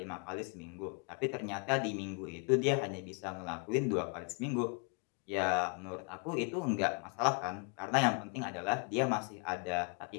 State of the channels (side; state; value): right; quieter; 36.3 dB